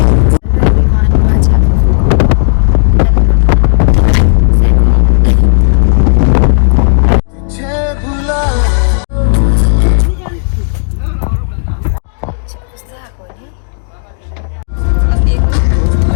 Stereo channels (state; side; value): silent; right; digital silence